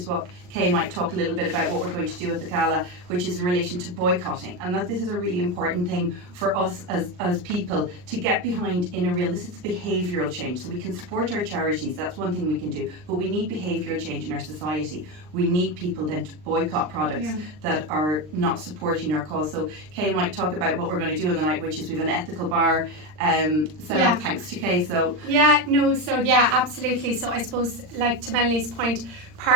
what Kay might talk a little bit about, what we're going to do at the Gala, which is in relation to boycotting. And that this is a really important thing for us as people to get behind in a real, this is behavioural change. So we can support our charities, that's one thing we can do, but we need behavioural change in our society. We need people then to boycott products that are not supporting our cause. So Kay might talk about what we're going to do on the night, which is we have an ethical bar set up, thanks to Kay. So absolutely. So I suppose, like to Melanie's point,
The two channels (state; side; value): late; left; 39 ms